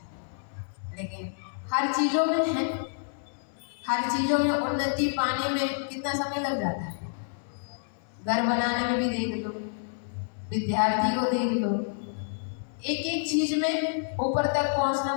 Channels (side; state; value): right; silent; 59 dB below the other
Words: लेकिन हर चीजों में है, हर चीजों में उन्नति पाने में कितना समय लग जाता है। घर बनाने में भी देख लो, विद्यार्थी को देख लो, एक एक चीज में ऊपर तक पहुंचना